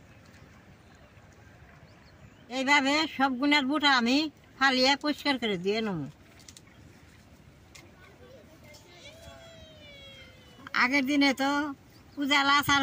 এইভাবে সব গুণের বুটা আমি ফালিয়ে পরিষ্কার করে দিয়ে নেব। আগের দিনে তো উজালা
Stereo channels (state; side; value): identical; both; correlation 1.00